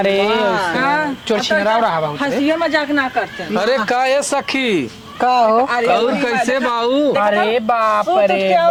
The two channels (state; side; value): identical; both; correlation 1.00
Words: चोरचिनरा रहा बहुत हंसियो मजाक ना करते अरे का ये सखी का हो कैसे बाऊ अरे बाप